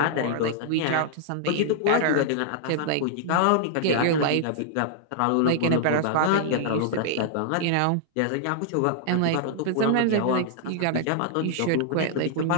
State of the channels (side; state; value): both; different; correlation -0.01